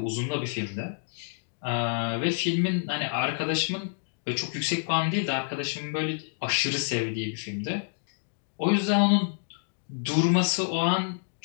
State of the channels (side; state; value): right; silent; digital silence